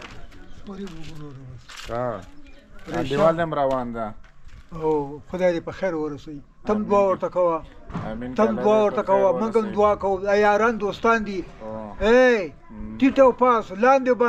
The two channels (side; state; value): both; identical; correlation 1.00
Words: سوري به وګورو بس ها انډیوال هم روان ده او خدای دې په خیر ورسوي تم دعا ورته کوه امین تم دعا ورته کوه موږ هم دعا کوو دا یاران دوستان دي ای ټیټ او پاس لاندې